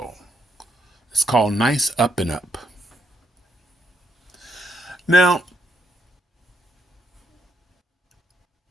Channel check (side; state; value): both; normal; correlation 0.76